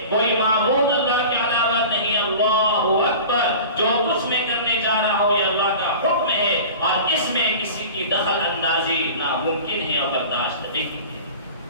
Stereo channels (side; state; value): both; inverted; correlation -0.37